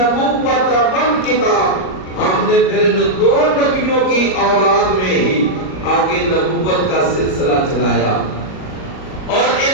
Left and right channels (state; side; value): late; right; 37 ms